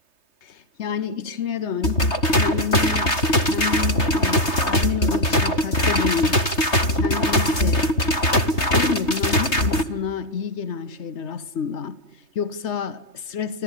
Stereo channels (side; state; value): right; late; 3.3 ms